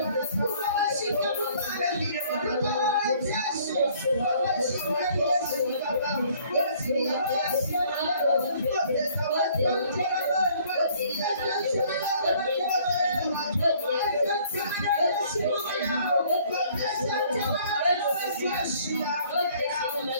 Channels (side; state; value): both; inverted; correlation -0.58